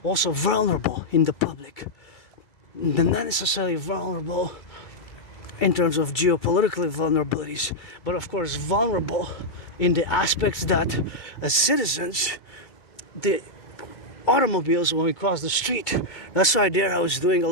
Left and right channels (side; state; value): right; late; 2.3 ms